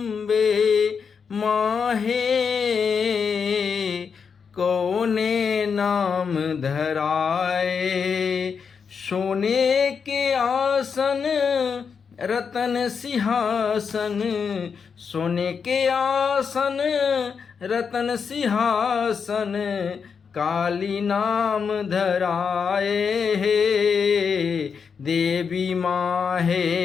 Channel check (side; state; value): right; quieter; 6.1 dB